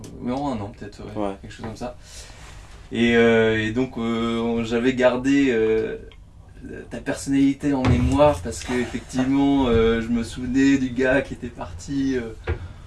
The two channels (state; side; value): identical; both; correlation 1.00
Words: Non, 1 an peut-être, ouais, Ouais. quelque chose comme ça. Et donc j'avais gardé ta personnalité en mémoire parce que effectivement je me souvenais du gars qui était parti